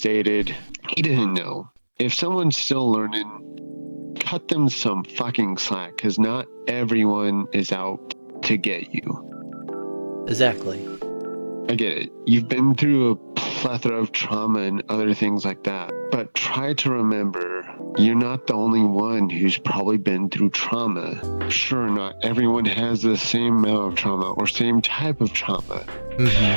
he didn't know. If someone's still learning, cut them some fucking slack, because not everyone is out to get you. Exactly. I get it. You've been through a plethora of trauma and other things like that. But try to remember, you're not the only one who's probably been through trauma. Sure, not everyone has the same amount of trauma or same type of trauma.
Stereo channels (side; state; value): both; inverted; correlation -1.00